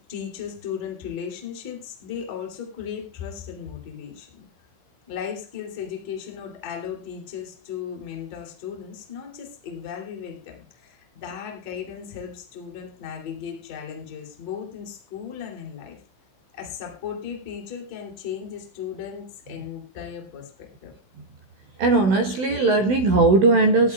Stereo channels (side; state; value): left; late; 16 ms